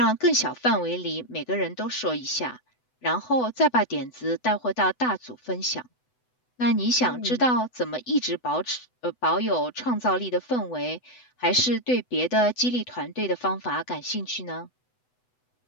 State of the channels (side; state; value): right; late; 8.0 ms